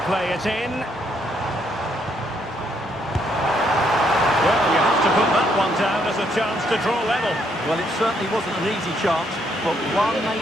play it in? Well, you have to put that one down as a chance to draw level. Well, it certainly wasn't an easy chance, but one they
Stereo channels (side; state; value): both; normal; correlation 0.72